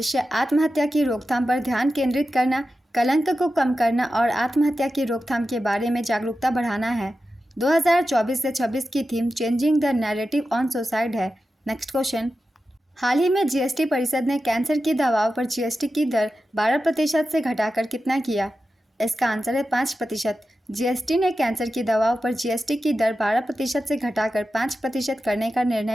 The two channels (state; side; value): normal; both; correlation 0.92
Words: आत्महत्या की रोकथाम पर ध्यान केंद्रित करना, कलंक को कम करना और आत्महत्या की रोकथाम के बारे में जागरूकता बढ़ाना है। 2024 से 26 की theme changing the narrative on suicide है। नेक्स्ट क्वेश्चन, हाल ही में जीएसटी परिषद ने कैंसर की दवाओं पर जीएसटी की दर 12% से घटाकर कितना किया? इसका आंसर है 5%। जीएसटी ने कैंसर की दवाओं पर जीएसटी की दर 12% से घटाकर 5% करने का